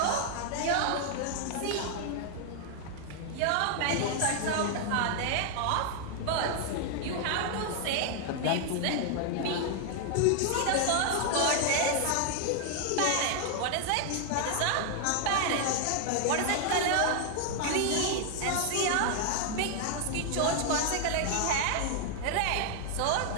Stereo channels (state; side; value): different; both; correlation 0.00